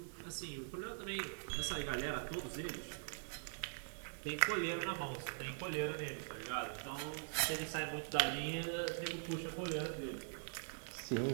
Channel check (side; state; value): left; silent; digital silence